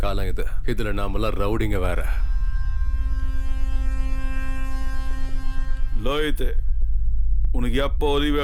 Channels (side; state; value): both; identical; correlation 1.00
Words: காலம் இது. இதுல நாமெல்லாம் ரவுடிங்க வேற. லோயித்து உனக்கு எப்போ உதவி